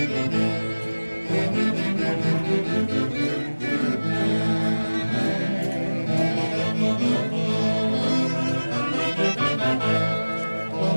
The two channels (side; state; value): both; inverted; correlation -1.00